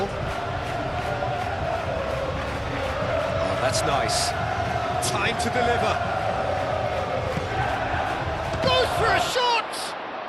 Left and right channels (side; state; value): both; identical; correlation 1.00